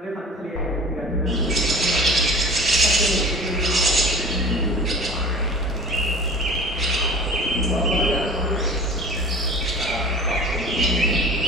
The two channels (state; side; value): normal; both; correlation 0.40